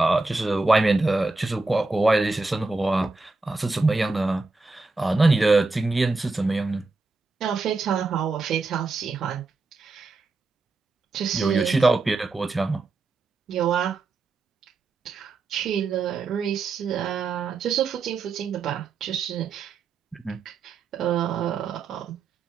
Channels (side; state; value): left; quieter; 3.7 dB